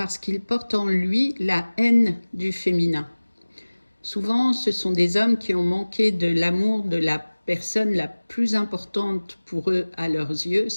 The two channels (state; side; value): inverted; both; correlation -1.00